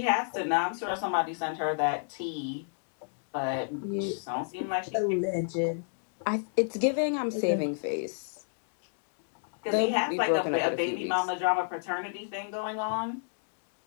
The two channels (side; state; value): right; silent; digital silence